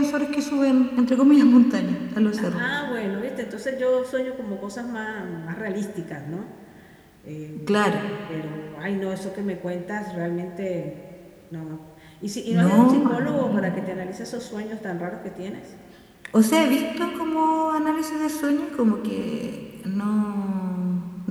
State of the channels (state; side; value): identical; both; correlation 1.00